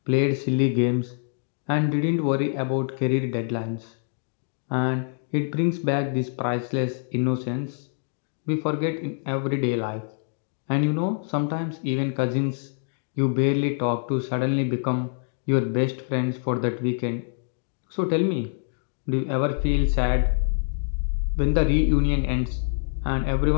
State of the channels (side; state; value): right; silent; 61 dB below the other